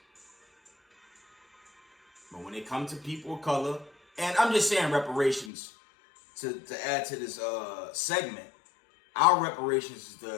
But when it comes to people of color, and I'm just saying reparations to add to this segment, our reparations is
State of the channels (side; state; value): right; drops out; at 5.5 s